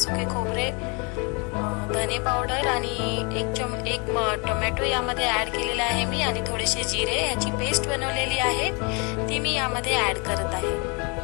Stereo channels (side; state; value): right; quieter; 31.8 dB